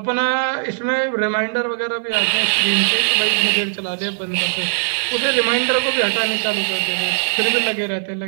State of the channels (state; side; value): silent; left; 66 dB below the other